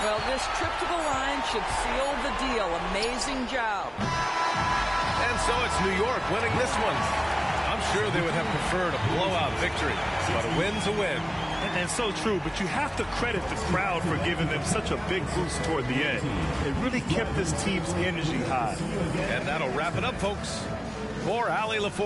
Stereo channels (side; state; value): both; identical; correlation 1.00